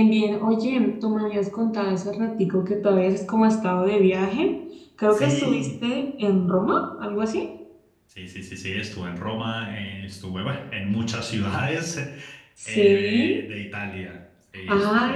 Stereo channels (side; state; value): both; identical; correlation 1.00